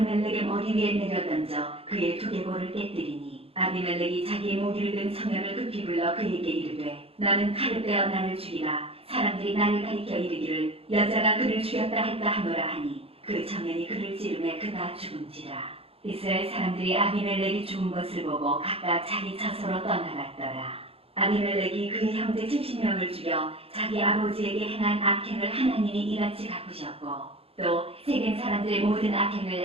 머리 위에 내려던져 그의 두개골을 깨뜨리니 아비멜렉이 자기의 무기를 든 청년을 급히 불러 그에게 이르되 너는 칼을 빼어 나를 죽이라. 사람들이 나를 가리켜 이르기를 여자가 그를 죽였다 할까 하노라 하니 그 청년이 그를 찌르매 그가 죽은지라. 이스라엘 사람들이 아비멜렉이 죽은 것을 보고 각각 자기 처소로 떠나갔더라. 아비멜렉이 그의 형제 70명을 죽여 자기 아버지에게 행한 악행을 하나님이 이같이 갚으셨고 또 세겜 사람들의 모든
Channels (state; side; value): late; left; 0.28 ms